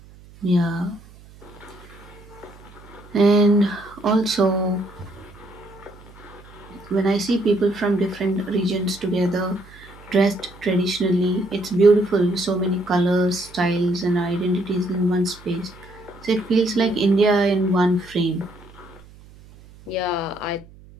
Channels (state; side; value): noise; right; hum, 22 dB below the sound